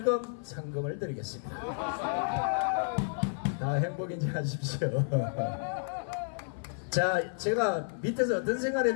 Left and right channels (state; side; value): silent; right; 57 dB below the other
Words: 상금을 드리겠습니다. 다 행복인지 하십시오. 자, 제가 밑에서 어떤 생각을